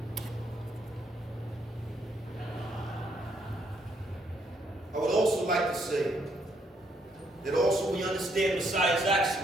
like to say that also we understand Messiah's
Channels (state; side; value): normal; both; correlation 0.72